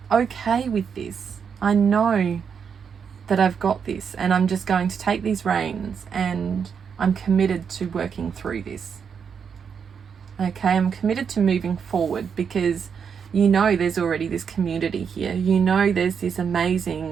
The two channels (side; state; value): left; quieter; 6.8 dB